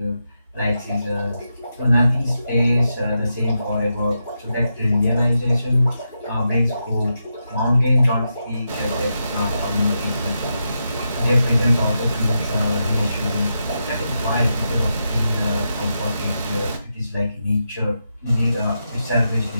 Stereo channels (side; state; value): both; inverted; correlation -0.85